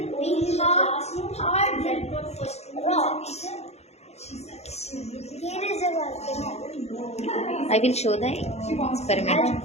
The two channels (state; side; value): late; right; 0.31 ms